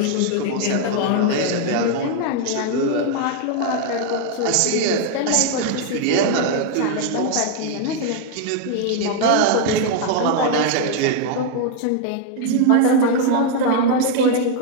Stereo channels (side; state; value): both; different; correlation 0.00